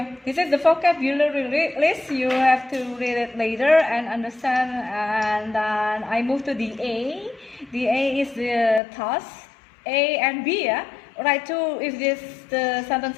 This is the vocabulary list. You have to read it later and understand. And then I move to the A. The A is the task. A and B, yeah. Write two if the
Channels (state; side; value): drops out; right; at 8.8 s